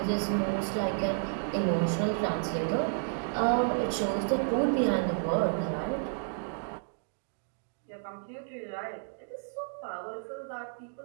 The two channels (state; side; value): silent; left; digital silence